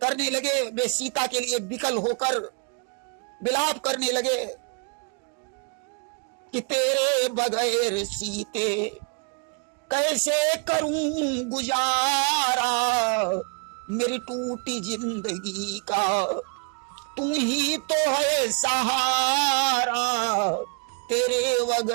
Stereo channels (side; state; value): left; quieter; 39.5 dB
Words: लगे। वे सीता के लिए विकल होकर विलाप करने लगे कि तेरे बगैर सीते कैसे करूं गुजारा, मेरी टूटी जिंदगी का तू ही तो है सहारा, तेरे